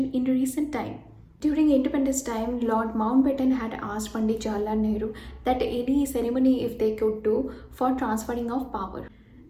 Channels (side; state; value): both; identical; correlation 1.00